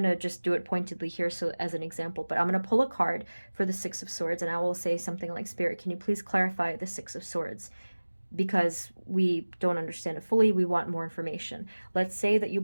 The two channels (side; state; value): both; inverted; correlation -1.00